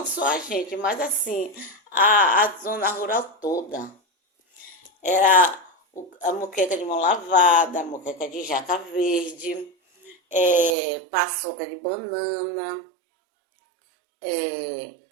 só a gente, mas assim, a zona rural toda. Era a moqueca de mão lavada, a moqueca de jaca verde, paçoca de banana,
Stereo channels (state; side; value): drops out; left; at 10.8 s